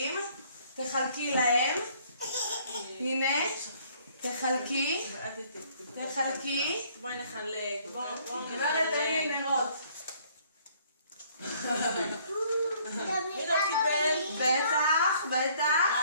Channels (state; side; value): inverted; both; correlation -0.61